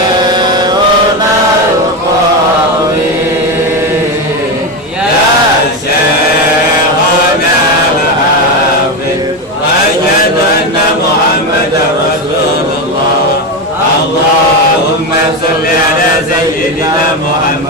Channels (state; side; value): normal; both; correlation 0.14